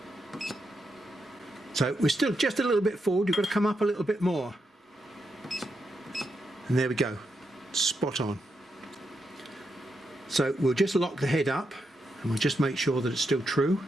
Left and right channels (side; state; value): both; normal; correlation 0.83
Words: So we're still just a little bit forward. You've got to come up a little bit more. And there we go, spot on. So we'll just lock the head up and we'll just make sure that it's still true.